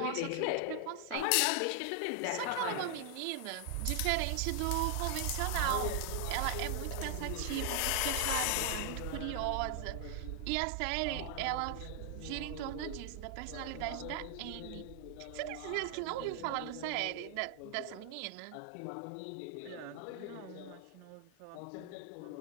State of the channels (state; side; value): different; both; correlation 0.00